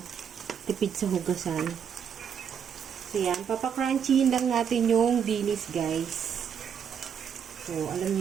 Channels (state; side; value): quieter; left; 7.7 dB